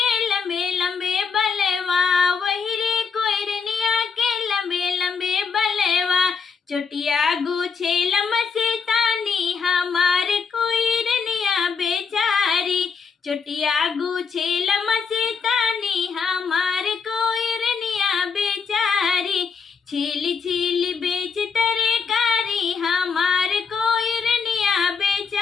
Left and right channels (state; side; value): quieter; right; 5.6 dB